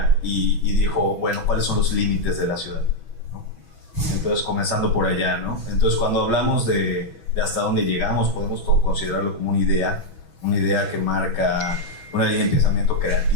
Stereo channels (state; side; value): late; right; 6.1 ms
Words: y dijo, bueno, ¿cuáles son los límites de la ciudad? ¿No? Entonces, comenzando por allá, ¿no? Entonces, cuando hablamos de hasta dónde llegamos, podemos considerarlo como una idea que marca una línea de pensamiento